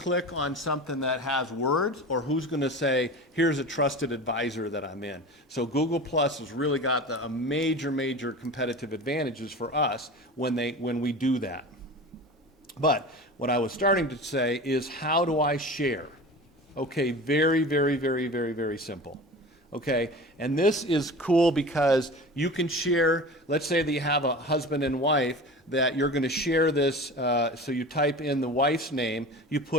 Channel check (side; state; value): both; normal; correlation 0.34